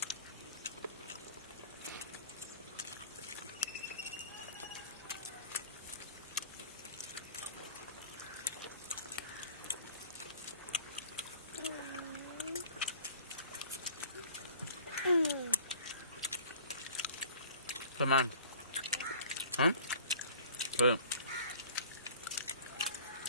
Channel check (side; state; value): both; inverted; correlation -0.47